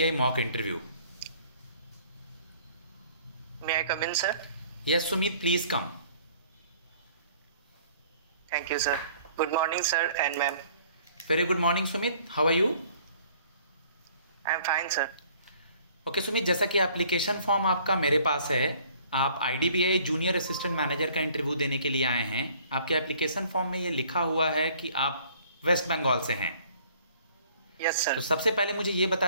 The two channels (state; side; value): inverted; both; correlation -0.56